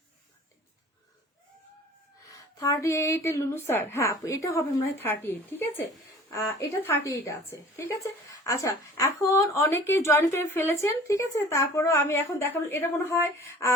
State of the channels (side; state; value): both; normal; correlation 0.47